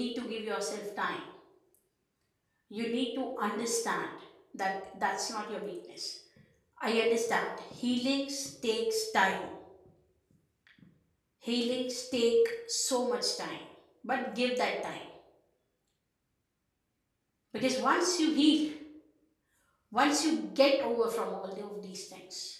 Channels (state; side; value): identical; both; correlation 1.00